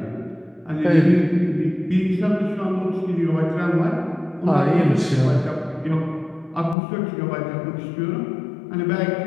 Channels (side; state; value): right; drops out; at 6.8 s